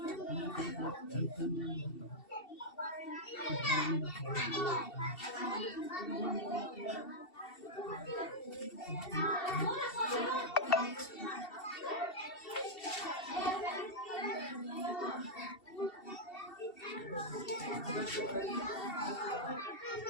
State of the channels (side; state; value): right; late; 2.7 ms